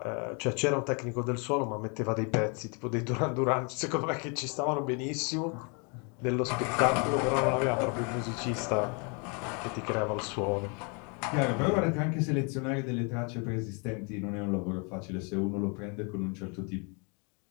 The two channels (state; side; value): quieter; right; 34.7 dB